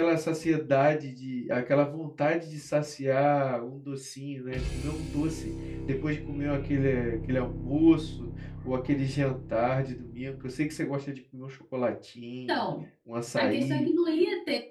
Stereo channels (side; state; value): both; identical; correlation 1.00